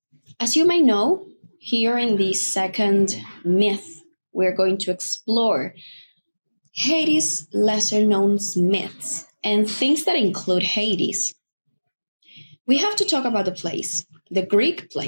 As you may know, here in the second myth, we're going to explore Hades' lesser known myths and things that include Hades. We have to talk about the plays, the Greek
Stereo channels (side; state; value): both; inverted; correlation -1.00